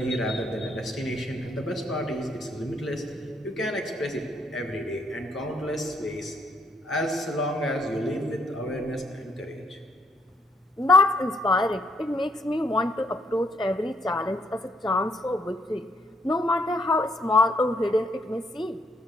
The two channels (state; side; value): normal; both; correlation 0.72